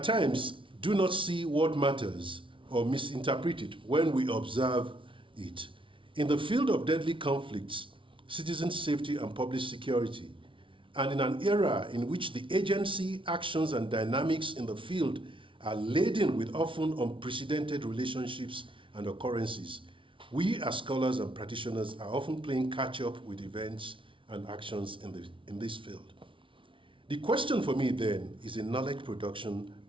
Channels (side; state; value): left; late; 0.25 ms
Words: times do not see what matters or misinterpret it when we observe it. In the field of deadly conflicts, citizen safety and public security, and in an era in which the agency, actions, and dynamics in the field are laden with often unprecedented relationships and occurrences, we as scholars and practitioners are often playing catch-up with events and actions in this field. The question for me then is a knowledge production,